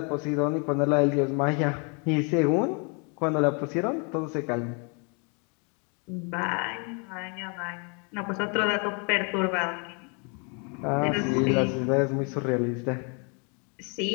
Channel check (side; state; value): right; quieter; 35.5 dB